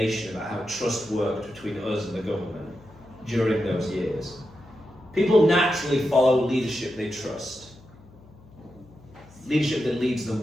about how trust worked between us and the government during those years. People naturally follow leadership they trust. Leadership that leads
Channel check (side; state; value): left; noise; hum, 24 dB below the sound